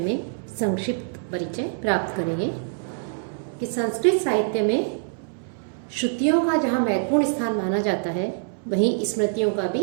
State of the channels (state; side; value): silent; left; 62 dB below the other